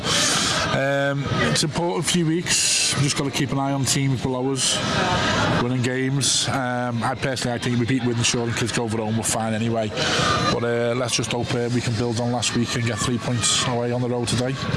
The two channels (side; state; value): both; identical; correlation 1.00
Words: it's important few weeks. We've just got to keep an eye on teams below us winning games. I think if we beat Wythenshawe and kids go over home, we're fine anyway. But let's just hope we can build on last week and get 3 points away on the road today.